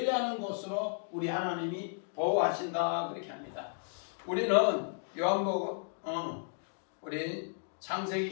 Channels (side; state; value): right; silent; 55 dB below the other